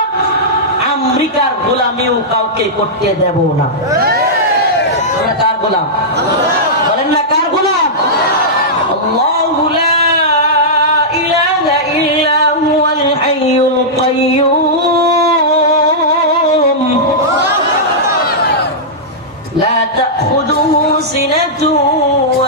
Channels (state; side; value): normal; both; correlation -0.11